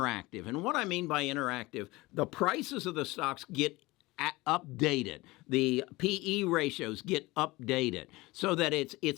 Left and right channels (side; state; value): right; quieter; 21.1 dB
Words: And what I mean by interactive, the prices of the stocks get updated. The PE ratios get updated so that